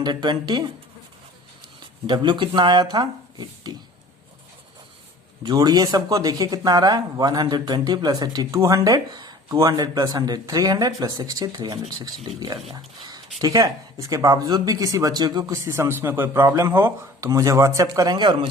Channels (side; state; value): both; normal; correlation 0.45